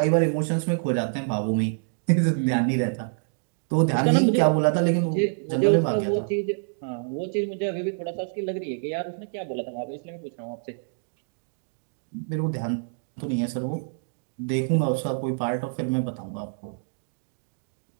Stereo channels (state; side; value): silent; left; digital silence